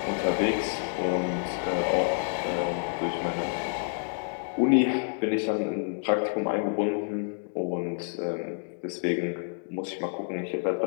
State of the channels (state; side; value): silent; right; digital silence